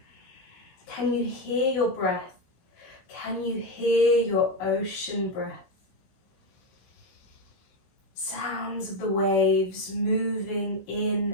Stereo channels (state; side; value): late; right; 16 ms